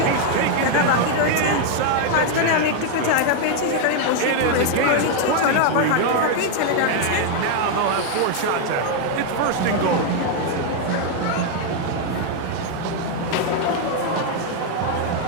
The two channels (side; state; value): both; different; correlation 0.00